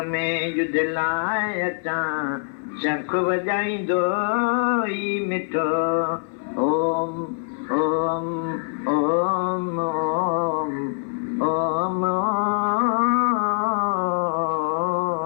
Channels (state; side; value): silent; right; 57 dB below the other